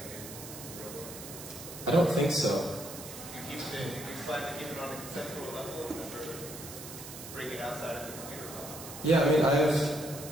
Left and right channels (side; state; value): right; noise; hiss, 12 dB below the sound